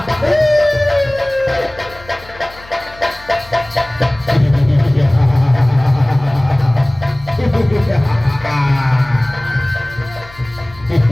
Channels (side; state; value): left; noise; hum, 21 dB below the sound